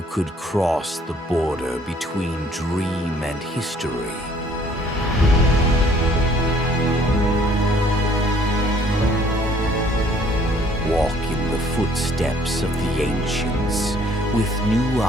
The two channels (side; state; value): both; normal; correlation 0.60